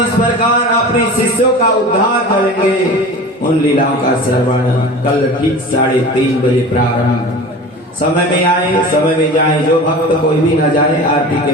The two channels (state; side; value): normal; both; correlation 0.36